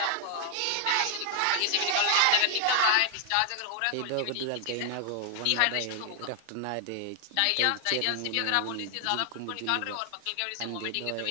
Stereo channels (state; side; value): different; both; correlation 0.00